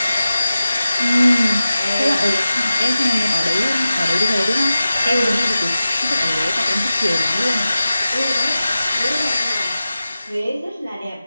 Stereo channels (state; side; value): inverted; both; correlation -0.95